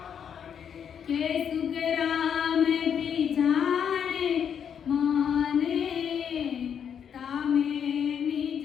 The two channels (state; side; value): quieter; right; 8.0 dB